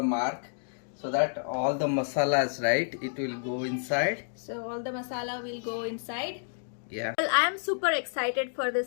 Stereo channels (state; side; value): silent; right; digital silence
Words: mark so that all the masalas, right? It will go inside. So all the masala will go inside. Yeah. Well, I am super excited for